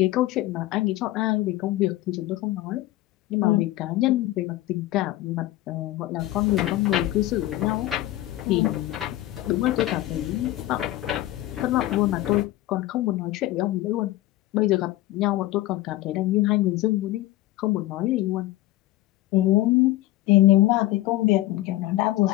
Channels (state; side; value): quieter; right; 16.1 dB